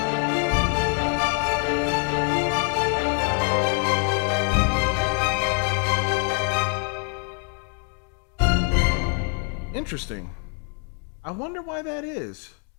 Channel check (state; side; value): quieter; right; 38.7 dB